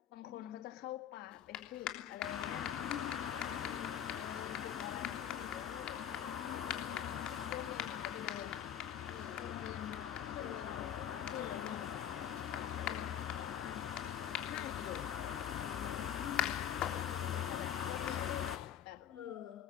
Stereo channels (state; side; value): quieter; right; 9.6 dB